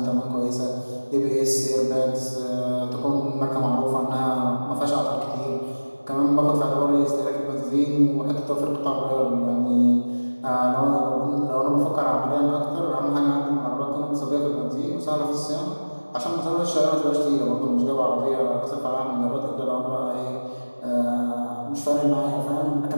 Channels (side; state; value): both; inverted; correlation -1.00